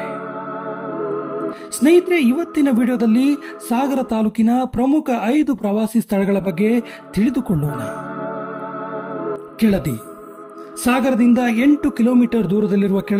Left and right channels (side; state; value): both; identical; correlation 1.00